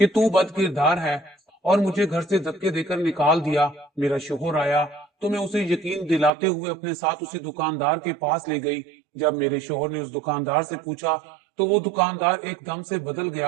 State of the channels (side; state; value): left; drops out; at 6.3 s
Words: तू बदकिरदार है, और मुझे घर से धक्के देकर निकाल दिया। मेरा शोहर आया तो मैं उसे यकीन दिलाते हुए अपने साथ उसी दुकानदार के पास ले गई। जब मेरे शोहर ने उस दुकानदार से पूछा तो वो दुकानदार एकदम से बदल